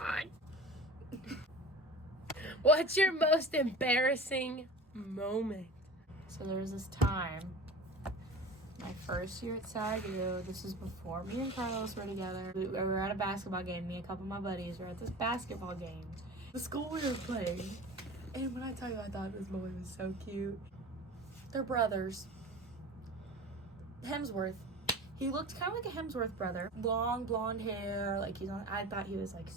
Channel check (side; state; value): both; normal; correlation 0.35